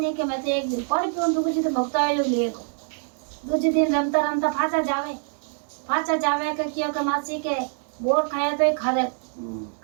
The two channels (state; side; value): silent; left; 62 dB below the other